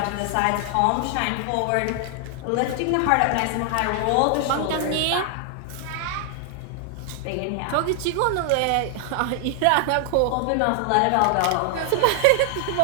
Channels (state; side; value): different; both; correlation 0.00